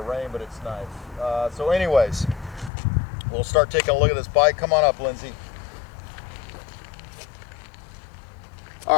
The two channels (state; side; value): drops out; right; at 2.7 s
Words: rain, but it's nice. So anyways, we'll start taking a look at this bike. Come on up, Lindsay.